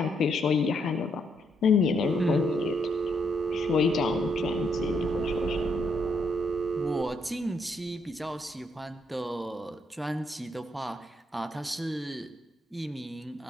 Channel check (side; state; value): both; normal; correlation 0.75